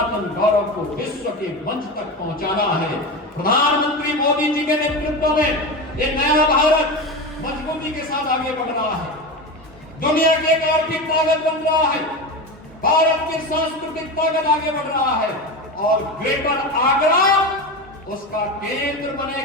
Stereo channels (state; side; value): normal; both; correlation 0.22